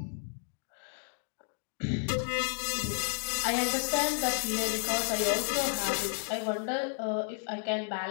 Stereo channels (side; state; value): right; silent; 56 dB below the other